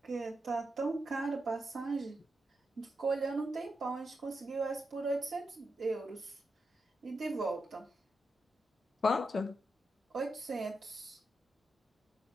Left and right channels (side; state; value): both; normal; correlation 0.86